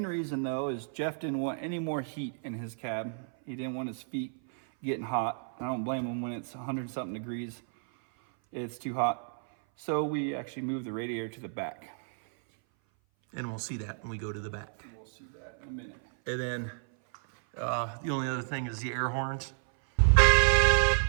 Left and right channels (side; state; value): left; silent; 56 dB below the other